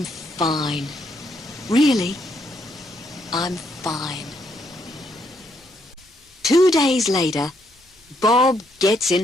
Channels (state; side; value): normal; both; correlation 0.74